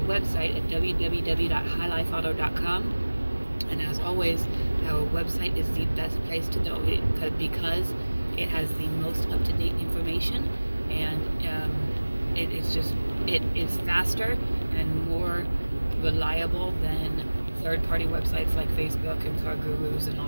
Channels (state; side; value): inverted; both; correlation -1.00